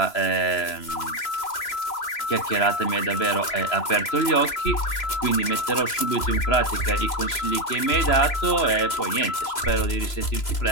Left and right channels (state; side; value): late; right; 3.0 ms